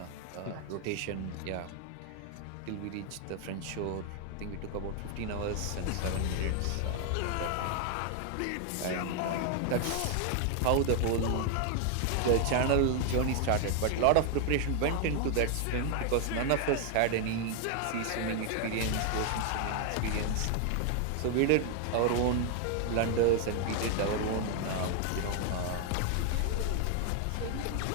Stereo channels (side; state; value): both; different; correlation 0.00